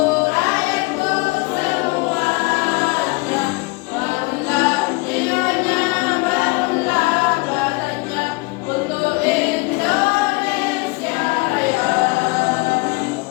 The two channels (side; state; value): right; quieter; 26.4 dB